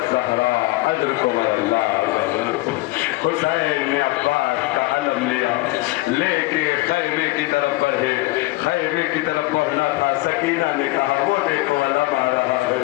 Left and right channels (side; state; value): right; quieter; 20.4 dB